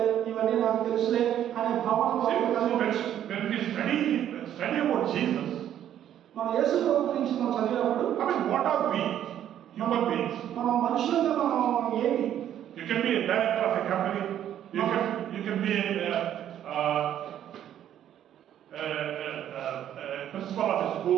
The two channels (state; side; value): quieter; left; 10.8 dB